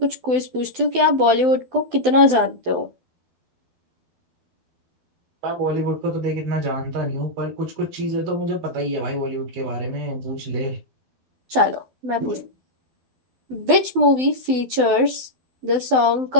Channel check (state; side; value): late; left; 12 ms